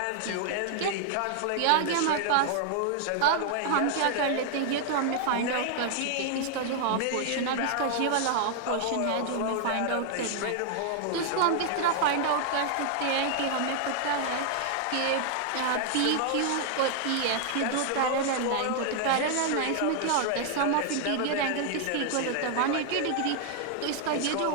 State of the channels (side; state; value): both; different; correlation 0.00